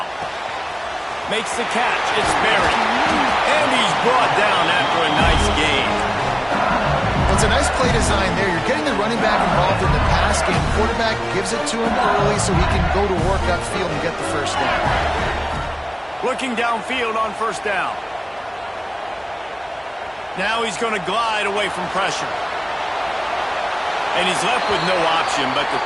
Makes the catch. It's Berry. And he's brought down after a nice gain. Well, it's a nice play design there. You're getting the running back involved in the pass game. Quarterback gives it to him early so he can go to work upfield and get the 1st down. Looking downfield on 1st down. Now he's going to glide away from pressure. And he's left with no option but to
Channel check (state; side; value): identical; both; correlation 1.00